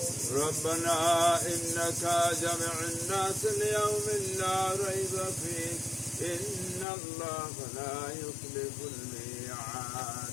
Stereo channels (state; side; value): drops out; right; at 6.9 s